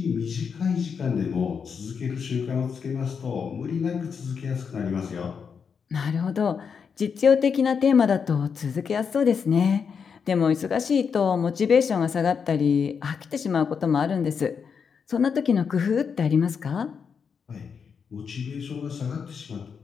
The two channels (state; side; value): quieter; right; 6.3 dB